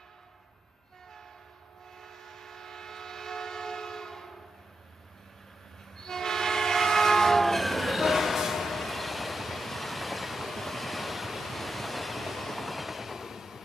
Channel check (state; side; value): normal; both; correlation 0.87